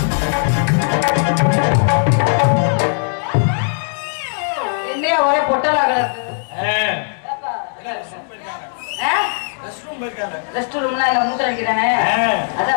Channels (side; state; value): right; silent; digital silence